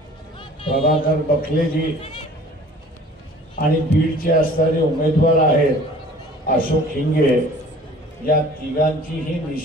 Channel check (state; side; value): normal; both; correlation 0.48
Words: प्रभाकर बखलेजी आणि बीडचे असणारे उमेदवार आहेत अशोक हिंगे। या तिघांची ही